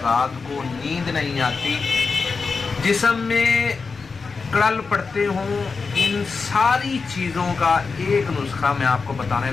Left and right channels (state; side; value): quieter; right; 4.7 dB